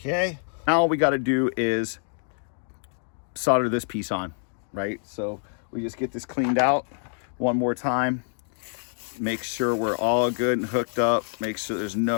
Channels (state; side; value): silent; right; 61 dB below the other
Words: Okay, now all we got to do is solder this piece on, right? So we just get this cleaned out one more time, make sure we're all good and hooked up, make sure there's